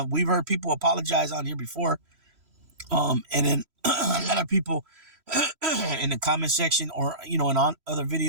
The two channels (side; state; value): left; late; 3.1 ms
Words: we've heard people apologize on here before, and then a lot of people in the comment section or in on other